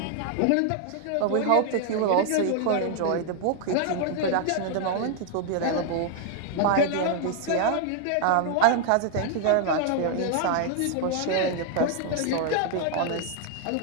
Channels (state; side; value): different; both; correlation 0.00